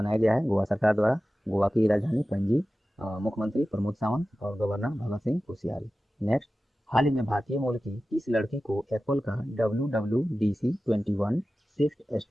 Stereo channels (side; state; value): both; normal; correlation 0.95